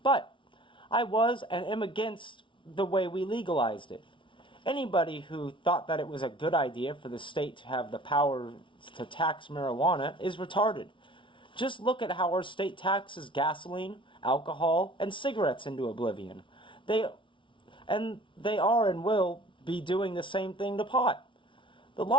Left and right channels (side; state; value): right; late; 0.25 ms